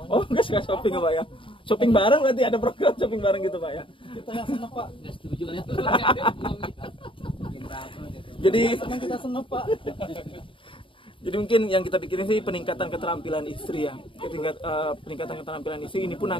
Oh nggak suka shopping Pak ya? Shopping bareng berarti ada program shopping bareng gitu Pak ya? Kita yang seneng Pak. Nggak setuju ya. Jadi kita seneng Pak. Jadi mungkin yang kita pikirin sih peningkatan keterampilan istri ya, peningkatan keterampilan istri ini pun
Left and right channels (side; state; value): right; late; 0.25 ms